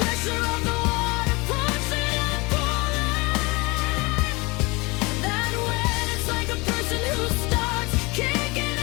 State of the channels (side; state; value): right; quieter; 25.4 dB